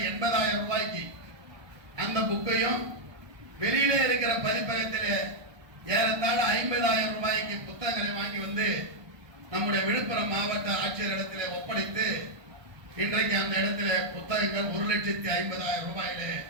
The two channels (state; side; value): late; left; 1.2 ms